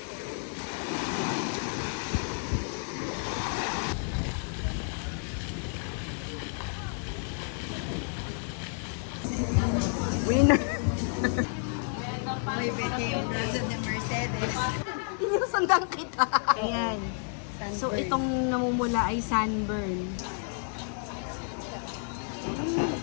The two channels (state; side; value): silent; right; 55 dB below the other